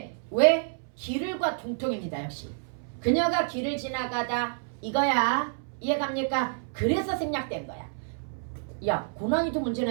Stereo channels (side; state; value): left; silent; 59 dB below the other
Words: 왜? 길을과 동통입니다. 역시. 그녀가 길을 지나가다 이거야. 이해갑니까? 그래서 생략된 거야. 야, 고난이도